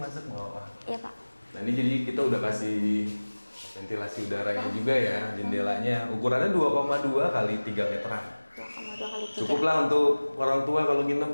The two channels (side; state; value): both; inverted; correlation -1.00